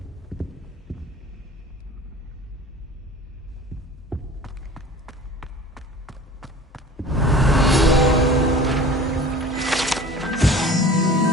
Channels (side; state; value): both; normal; correlation 0.43